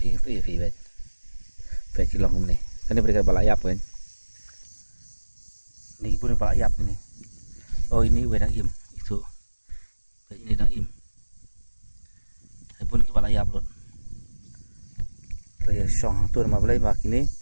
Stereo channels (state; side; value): inverted; both; correlation -1.00